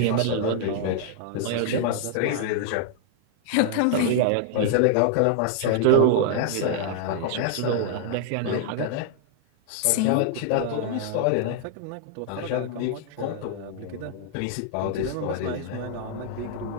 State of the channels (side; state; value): both; different; correlation -0.01